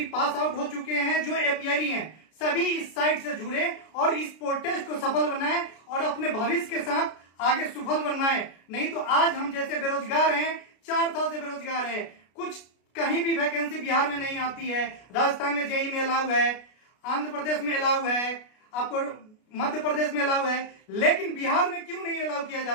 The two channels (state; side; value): late; right; 33 ms